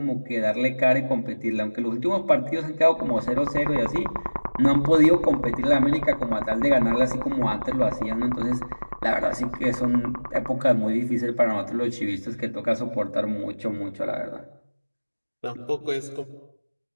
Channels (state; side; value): inverted; both; correlation -1.00